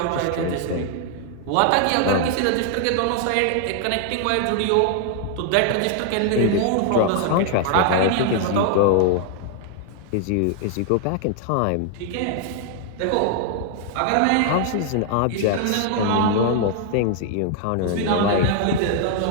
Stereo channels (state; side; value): different; both; correlation 0.00